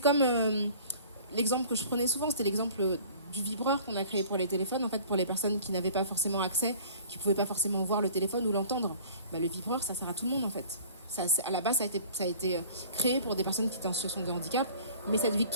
l'exemple que je prenais souvent, c'était l'exemple du vibreur qu'on a créé pour les téléphones, en fait, pour les personnes qui n'avaient pas forcément accès, qui ne pouvaient pas forcément voir le téléphone ou l'entendre. Le vibreur, ça sert à tout le monde, en fait. À la base, ça a été créé pour des personnes qui étaient en situation de handicap, mais cette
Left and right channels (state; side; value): inverted; both; correlation -0.48